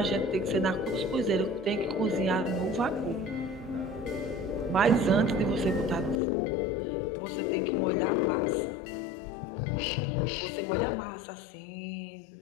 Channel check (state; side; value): drops out; right; at 6.2 s